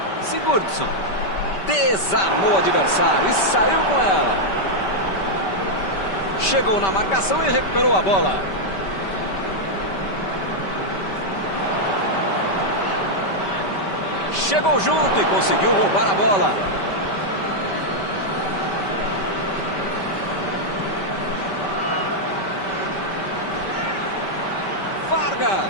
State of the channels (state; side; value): late; right; 5.1 ms